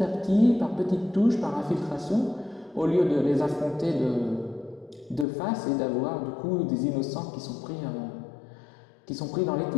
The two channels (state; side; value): drops out; right; at 5.2 s